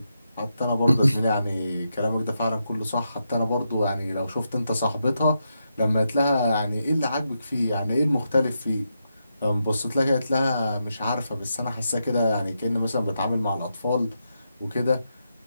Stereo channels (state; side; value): inverted; both; correlation -0.84